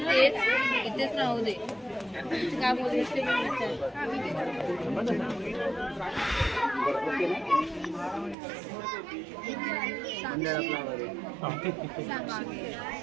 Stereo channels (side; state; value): left; drops out; at 8.3 s